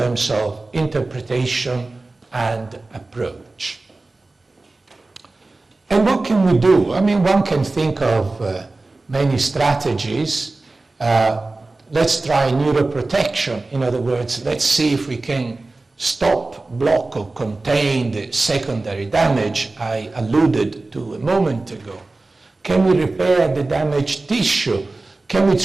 of interpretation and approach. And what can we do? I mean, one can think of many strategies. Let's try neuroprotection. In other words, let's see if we can stop, block, or contain the secondary damage I alluded to a moment ago. Can we repair the damaged tissue? Can we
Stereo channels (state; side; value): quieter; left; 3.3 dB